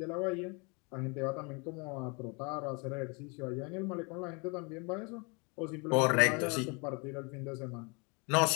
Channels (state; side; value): quieter; right; 31.2 dB